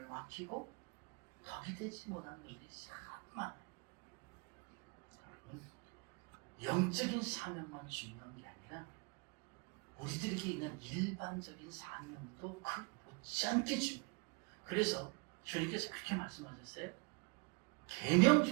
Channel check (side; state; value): left; quieter; 30.3 dB